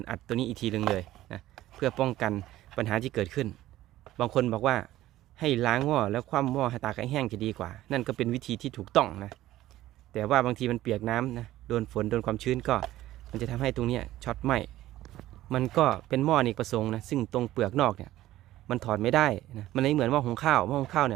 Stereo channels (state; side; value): quieter; left; 15.0 dB